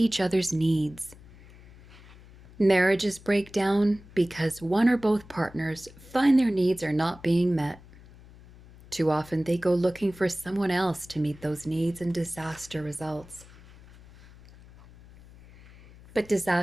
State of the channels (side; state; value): left; noise; hum, 22 dB below the sound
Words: other's needs. Marriages break down because one or both partners find their needs are not being met. Too often they go looking for someone else to meet those needs, and disaster results. But